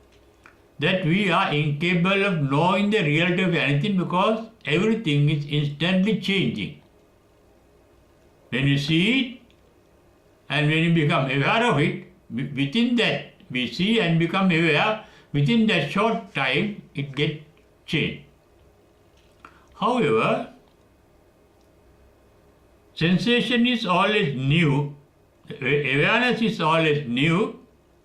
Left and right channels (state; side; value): identical; both; correlation 1.00